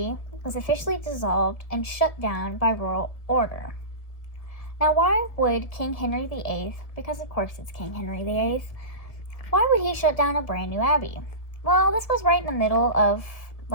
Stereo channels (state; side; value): late; right; 1.7 ms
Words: was officially dissolved and shut down by royal order. Now, why would King Henry VIII, because of course it's King Henry VIII, why would he shut down a brand new abbey? Well, this was right in the middle of,